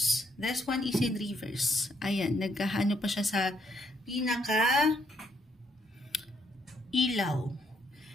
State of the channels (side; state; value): both; normal; correlation 0.72